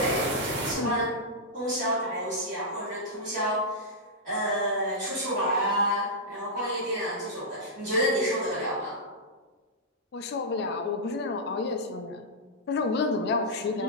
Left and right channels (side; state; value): both; normal; correlation -0.10